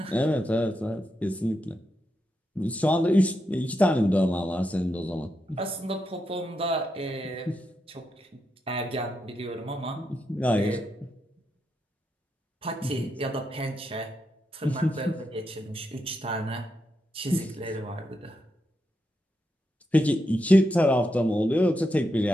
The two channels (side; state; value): both; normal; correlation 0.84